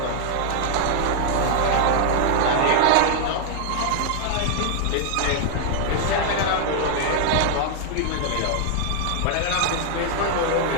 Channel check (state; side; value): different; both; correlation 0.00